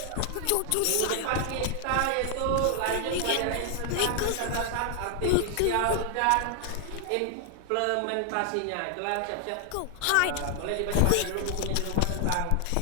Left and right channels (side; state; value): both; different; correlation 0.00